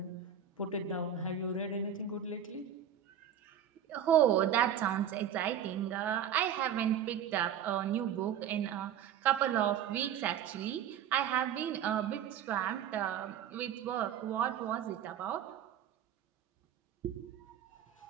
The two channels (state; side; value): quieter; left; 9.1 dB